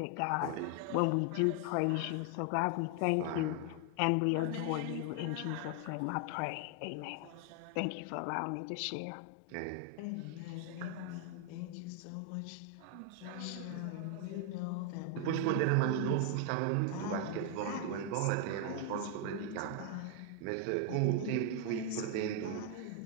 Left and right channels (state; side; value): different; both; correlation 0.00